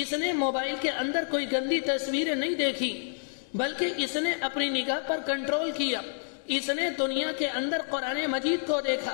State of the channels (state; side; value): silent; right; digital silence